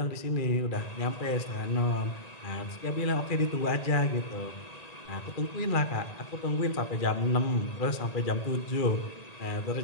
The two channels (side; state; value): right; late; 1.8 ms